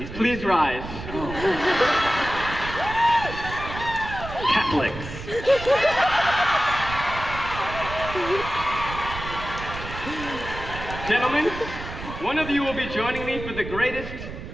stands? Please rise. Catholics. Gentlemen, one of you will be joining me for the greatest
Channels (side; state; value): right; noise; rumble, 10 dB below the sound